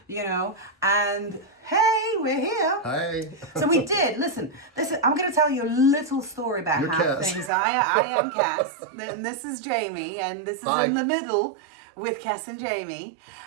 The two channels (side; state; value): left; drops out; at 7.5 s